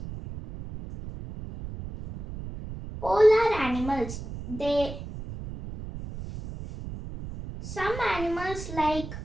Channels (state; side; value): noise; right; rumble, 10 dB below the sound